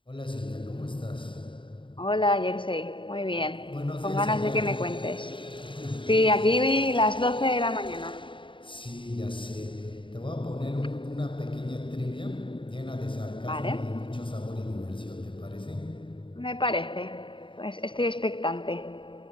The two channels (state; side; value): late; right; 0.24 ms